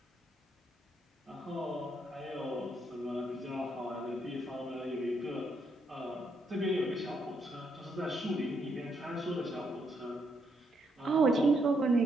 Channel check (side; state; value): both; normal; correlation 0.76